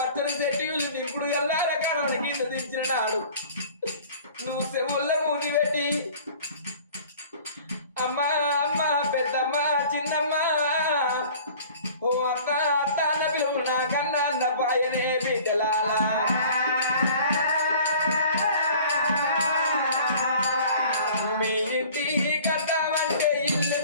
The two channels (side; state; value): both; inverted; correlation -0.47